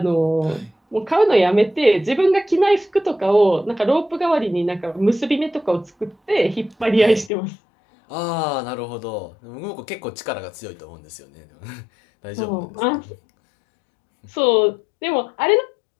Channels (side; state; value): right; drops out; at 7.3 s